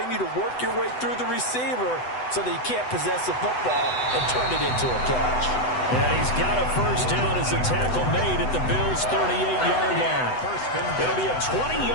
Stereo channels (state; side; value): late; right; 8.0 ms